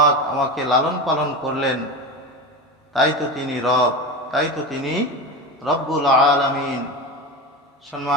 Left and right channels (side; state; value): both; normal; correlation 0.24